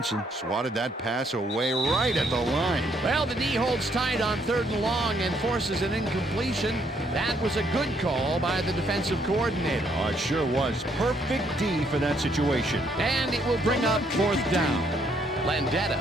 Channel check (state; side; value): normal; both; correlation 0.70